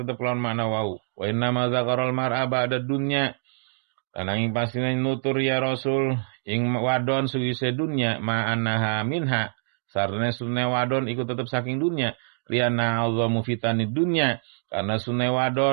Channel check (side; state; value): left; silent; digital silence